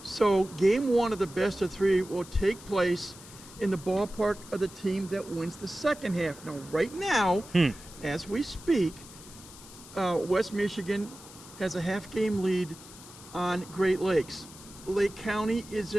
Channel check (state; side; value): noise; left; hiss, 18 dB below the sound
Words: So game 1 of the best-of-3 will take place in the ballpark of the team that wins the second half. Now, right now, as we speak, West Michigan has a half-game lead on Great Lakes. Lake County is